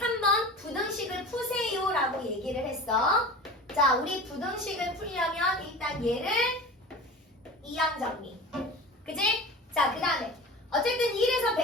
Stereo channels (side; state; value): both; normal; correlation 0.35